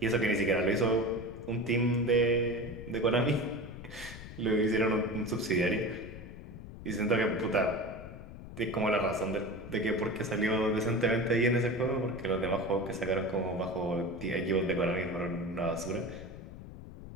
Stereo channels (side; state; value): left; noise; rumble, 13 dB below the sound